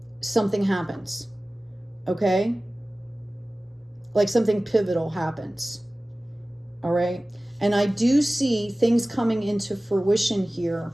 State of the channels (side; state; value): both; normal; correlation 0.97